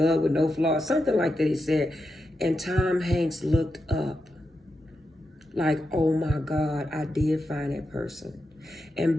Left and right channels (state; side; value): normal; both; correlation 0.87